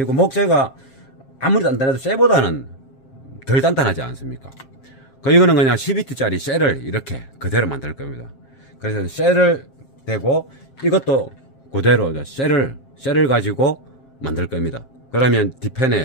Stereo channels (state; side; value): late; right; 7.5 ms